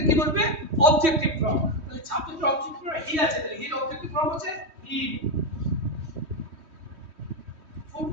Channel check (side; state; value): left; late; 3.2 ms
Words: কি বসবে? Objective form. তাহলে সাবজেক্টের অবজেক্টিভ ফর্ম হি আছে, তাহলে হির অবজেক্টিভ ফর্ম হচ্ছে হি।